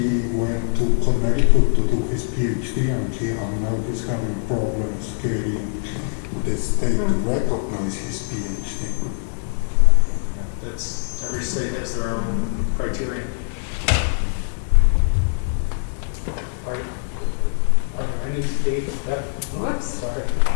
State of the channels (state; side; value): silent; right; digital silence